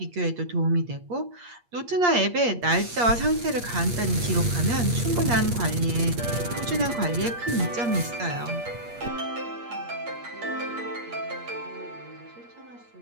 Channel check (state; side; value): late; left; 8.5 ms